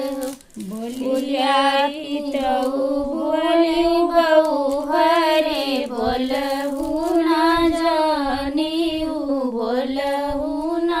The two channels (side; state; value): both; identical; correlation 1.00